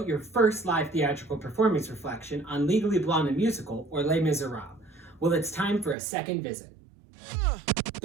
your first live theatrical performance reflection on Legally Blonde the Musical or Les Miserables? Well, it's time for a second visit.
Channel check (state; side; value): drops out; left; at 6.0 s